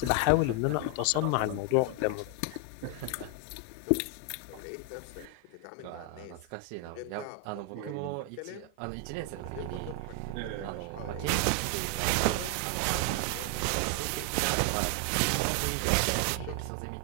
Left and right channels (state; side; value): different; both; correlation 0.00